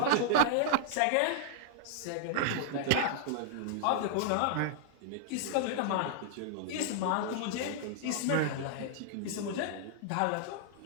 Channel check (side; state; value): both; different; correlation -0.01